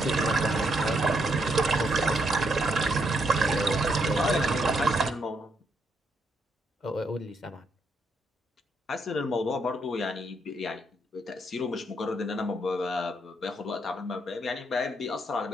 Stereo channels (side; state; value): both; normal; correlation 0.76